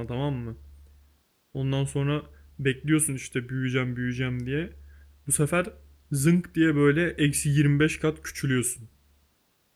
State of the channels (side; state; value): both; identical; correlation 1.00